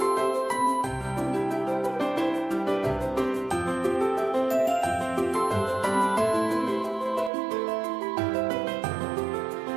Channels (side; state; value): left; drops out; at 7.3 s